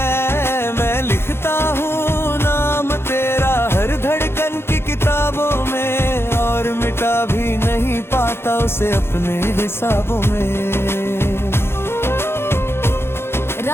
मैं लिखता हूँ नाम तेरा हर धड़कन की किताबों में, और मिटा भी नहीं पाता उसे अपने हिसाबों में।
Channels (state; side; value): late; right; 0.12 ms